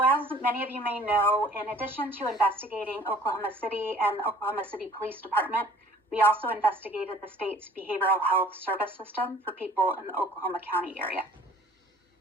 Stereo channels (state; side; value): normal; both; correlation 0.52